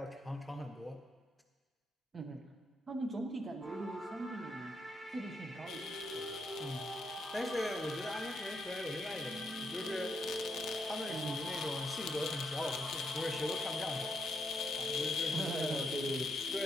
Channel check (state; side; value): normal; both; correlation 0.80